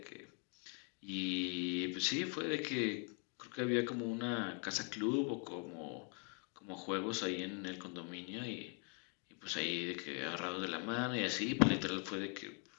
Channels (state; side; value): quieter; right; 38.3 dB